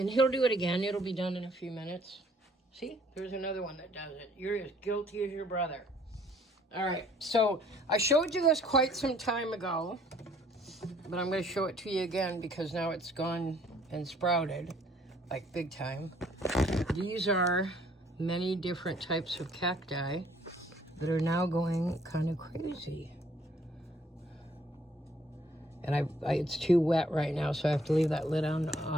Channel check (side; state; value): both; normal; correlation 0.61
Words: he'll do it again. It'll be done in a few minutes. See? There's another one that does it. You're as guilty as your brother. All right. So I showed you this quite some time ago. But I'm going to show it to you again because now it's gone and sprouted, like big time. These are many different types of cacti that are now going kind of crazy. And it's too wet right now, so I have to leave that lid on